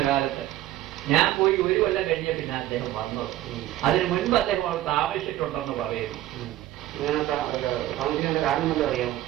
കാലത്ത് ഞാൻ പോയി 1 കൊല്ലം കഴിഞ്ഞ പിന്നെ അദ്ദേഹം വന്നത്. അതിന് മുൻപ് അദ്ദേഹം അവിടെ താമസിച്ചിട്ടുണ്ടെന്ന് പറയുന്നു. താമസിക്കുന്ന കാരണം വല്ലതും അറിയാമോ?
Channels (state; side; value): quieter; left; 14.6 dB